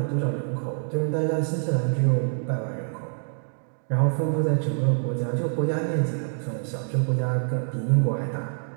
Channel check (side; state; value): left; silent; digital silence